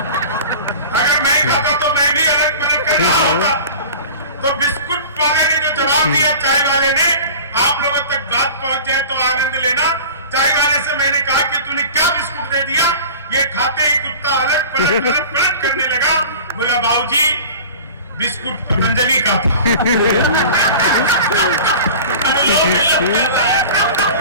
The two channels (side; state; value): both; inverted; correlation -0.38